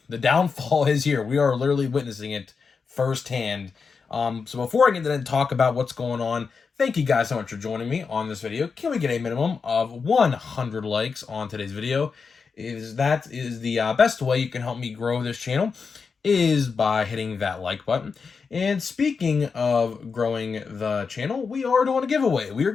the downfall is here. We are literally witnessing it firsthand. So before I get into talk about what's going on, thank you guys so much for joining me on this video. Can we get a minimum of 100 likes on today's video? That is the best way you can help me grow this channel is by hitting that like button. And speaking of growing the channel, we are doing a giveaway. We are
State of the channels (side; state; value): right; quieter; 5.3 dB